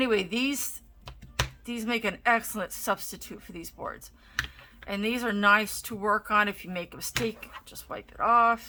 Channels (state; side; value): identical; both; correlation 1.00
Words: these make an excellent substitute for these boards. And these are nice to work on. If you make a mistake, just wipe it